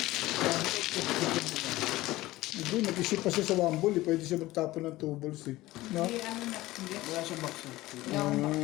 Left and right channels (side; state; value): right; quieter; 17.8 dB